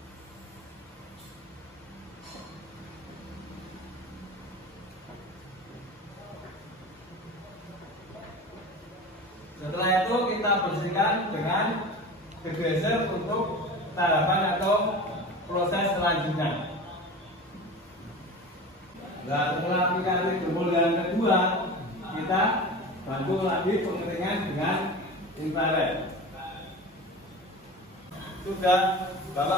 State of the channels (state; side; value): normal; both; correlation 0.33